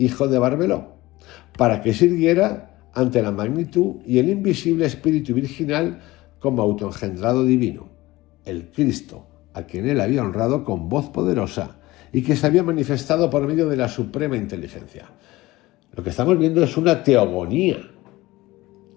de Barbelo, para que sirviera ante la magnitud y el invisible espíritu virginal como autoengendrado divino, el Cristo, a quien él había honrado con voz poderosa y que se había manifestado por medio de la suprema inteligencia. Lo que estamos viendo es una teogonía,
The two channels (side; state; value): right; quieter; 19.0 dB